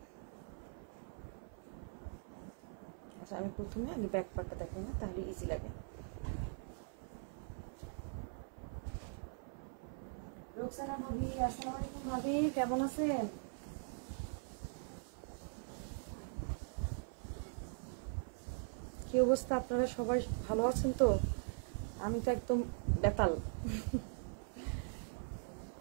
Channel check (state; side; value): silent; left; 50 dB below the other